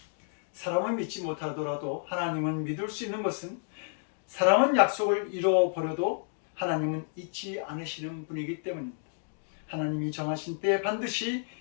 사람을 믿지 못하더라도 하나님은 믿을 수 있는 것은 사람은 약속을 잃어버려도 하나님은 잊지 않으시는 분이기 때문입니다. 하나님이 정하신 때에 반드시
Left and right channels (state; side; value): silent; right; digital silence